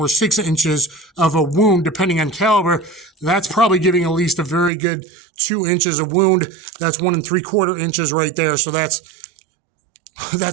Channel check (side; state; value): left; drops out; at 4.7 s